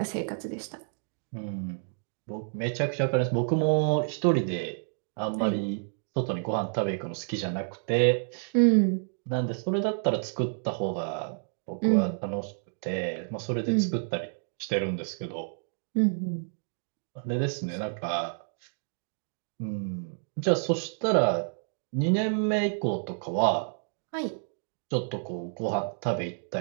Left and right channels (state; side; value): silent; left; digital silence